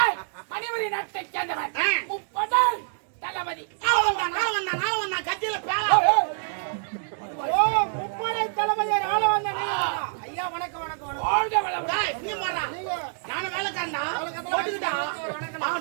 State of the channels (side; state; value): left; silent; digital silence